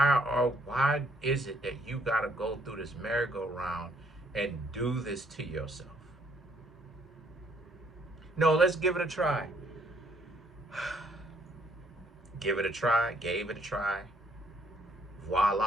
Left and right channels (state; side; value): normal; both; correlation 0.67